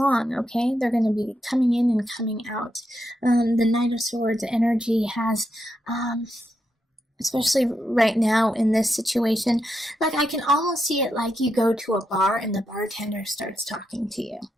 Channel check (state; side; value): normal; both; correlation 0.83